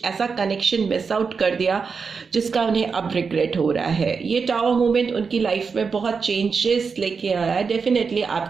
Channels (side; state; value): left; quieter; 5.3 dB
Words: ऐसा कनेक्शन मिस आउट कर दिया जिसका उन्हें अब रिग्रेट हो रहा है। ये टावर मोमेंट उनकी लाइफ में बहुत चेंजेस लेके आया है, डेफिनेटली